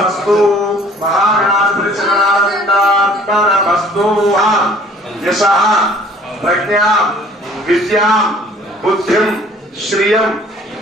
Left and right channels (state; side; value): normal; both; correlation 0.54